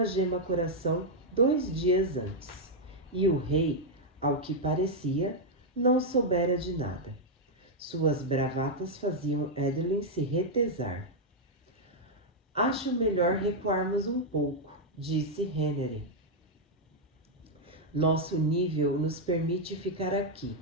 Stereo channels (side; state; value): both; normal; correlation -0.02